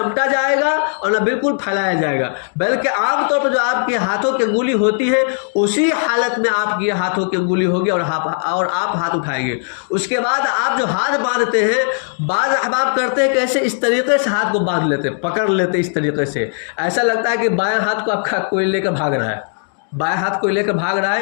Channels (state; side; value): silent; right; digital silence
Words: جائے گا اور نہ بالکل پھیلایا جائے گا, بلکہ عام طور پر جو آپ کے ہاتھوں کی انگلی ہوتی ہے اسی حالت میں آپ کی ہاتھوں کی انگلی ہوگی اور آپ ہاتھ اٹھائیں گے. اس کے بعد آپ جو ہاتھ باندھتے ہیں, بعض احباب کرتے ہیں کیسے اس طریقے سے ہاتھ کو باندھ لیتے, پکڑ لیتے اس طریقے سے. ایسا لگتا ہے کہ بائیں ہاتھ کو آپ کا کوئی لے کر بھاگ رہا ہے, بائیں ہاتھ کو لے کر بھاگ رہا ہے,